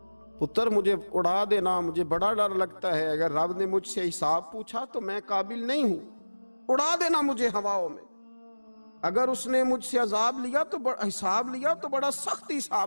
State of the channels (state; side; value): inverted; both; correlation -1.00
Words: پتر مجھے اڑا دینا، مجھے بڑا ڈر لگتا ہے، اگر رب نے مجھ سے حساب پوچھا تو میں قابل نہیں ہوں، اڑا دینا مجھے ہواؤں میں۔ اگر اس نے مجھ سے عذاب لیا تو حساب لیا تو بڑا سخت